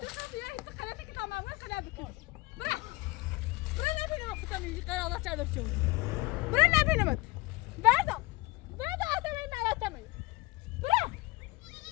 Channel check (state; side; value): quieter; right; 22.6 dB